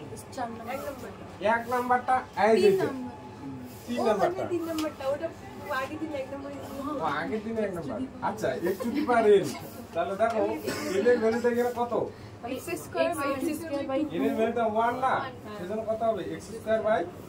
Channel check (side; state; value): both; identical; correlation 1.00